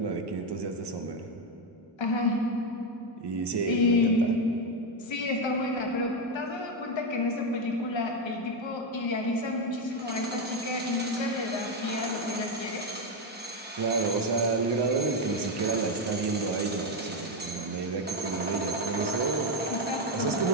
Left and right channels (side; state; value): both; normal; correlation 0.07